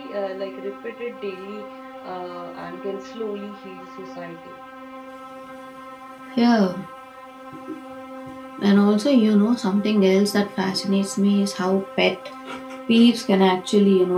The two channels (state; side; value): identical; both; correlation 1.00